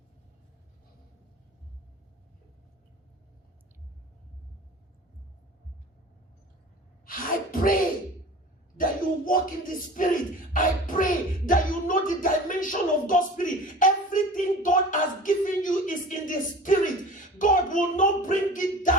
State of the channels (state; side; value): normal; both; correlation 0.39